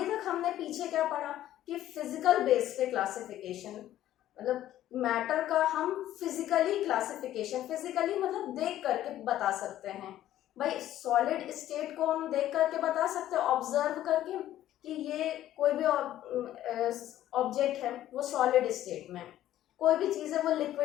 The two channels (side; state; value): right; quieter; 12.9 dB